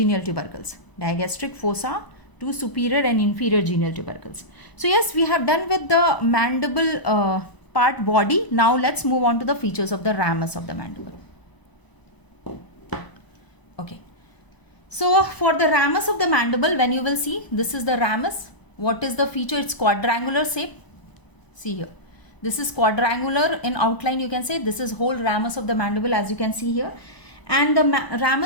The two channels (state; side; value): late; right; 1.0 ms